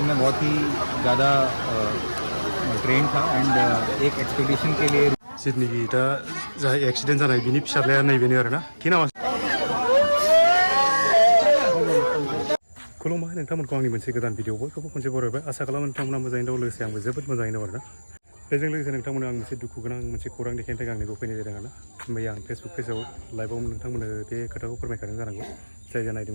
मैं बहुत ही ज़्यादा ट्रेन था एंड एक एक्सपेडिशन के लिए जितनिखि दा जा एक्सिडेंट जानाय बिनि फिसाज्लाया नैबेनो आरोना कि नामा खुलुमबाय नोंथांमोनखौ आंनि मोनसे गोदान भिडिअ बयखौबो खनसे बरायबाय आसा खालामो नोंथांमोना मोजाङैनो दं लोगोसे आंबो जोबोद मोजाङैनो दं आरोना बेजों लोगोसे नोंथांमोना आं मोनसे दुखु गोनां मोनसे खौरां देखायनो थाखाय आंनिखौ फैनाय जादों आरोना मैया आं फेसबुक पेजाव लाइभआव नोंथांमोननो बे खोथाखौ फोरमायखादों जानांगौ जाय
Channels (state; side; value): inverted; both; correlation -1.00